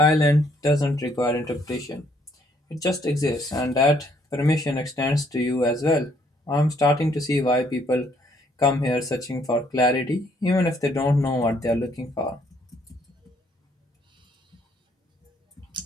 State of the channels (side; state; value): both; normal; correlation 0.67